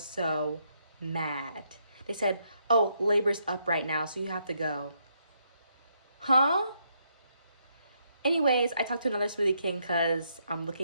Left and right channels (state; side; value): inverted; both; correlation -0.75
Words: so mad. They said, oh, labor's up right now, so you have to go. Huh? Anyways, I talked to another Smoothie King because I'm